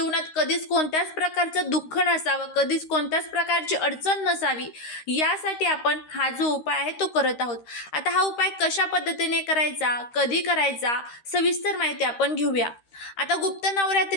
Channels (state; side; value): late; right; 13 ms